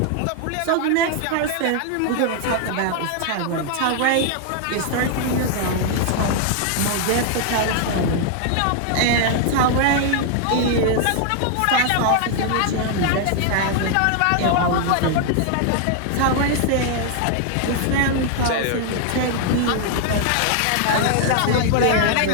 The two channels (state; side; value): different; both; correlation 0.00